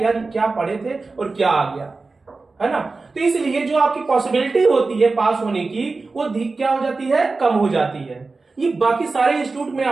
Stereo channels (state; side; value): quieter; left; 3.8 dB